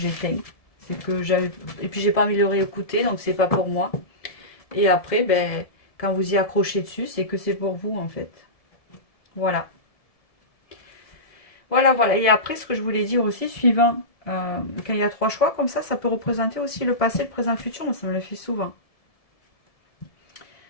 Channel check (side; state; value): right; late; 1.7 ms